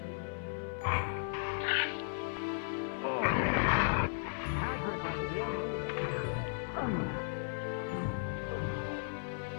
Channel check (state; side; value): silent; right; 54 dB below the other